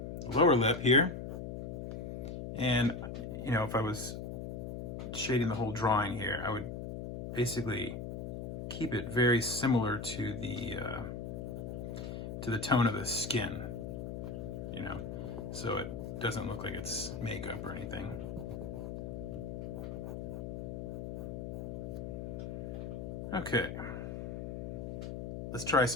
the lower lip here. And, you know, if I was shading the whole drawing here, I would basically keep it very similar to the tone of the skin, you know, so it doesn't look like it's makeup or anything. Okay, let's try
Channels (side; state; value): left; noise; hum, 6 dB below the sound